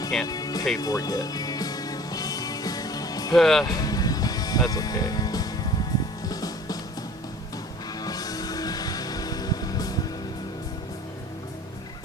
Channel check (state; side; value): normal; both; correlation 0.47